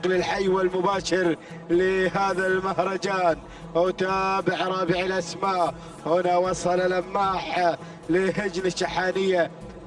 الحي والمباشر لهذا المهرجان. أتابع رابع الأسماء، هنا وصل لماح لهجن الشحانية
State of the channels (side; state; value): both; identical; correlation 1.00